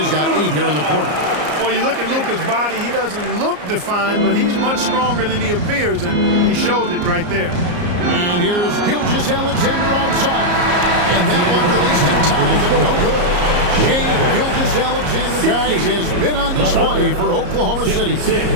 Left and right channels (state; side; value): late; left; 34 ms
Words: got 8 here in the quarter. Well, you look at Luka's body, he doesn't look defined, but he's much stronger than he appears, and he showed it right there. And here's Gilgeous-Alexander outside. And that one released in time, but no good. Shai Gilgeous-Alexander, guys, has been on display for Oklahoma City.